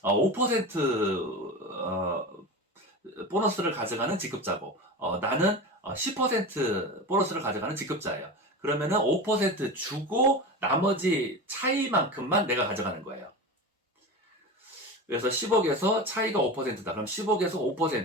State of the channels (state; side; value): normal; both; correlation 0.27